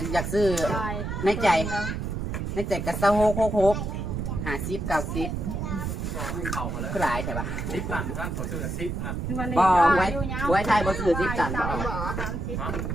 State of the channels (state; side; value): noise; right; rumble, 3 dB below the sound